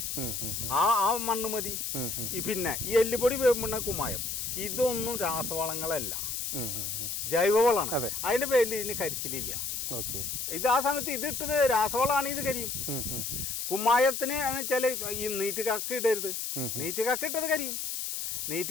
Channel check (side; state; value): left; noise; hiss, 3 dB below the sound